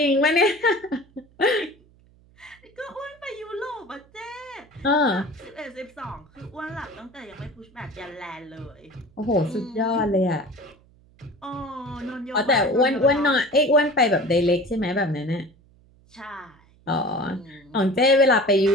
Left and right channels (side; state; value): right; noise; hum, 29 dB below the sound